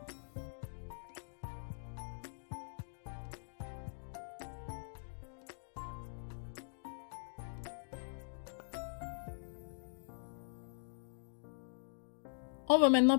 On va maintenant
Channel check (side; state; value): right; silent; digital silence